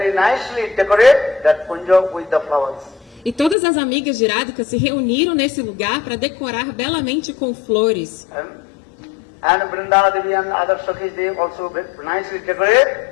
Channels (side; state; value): right; drops out; at 3.6 s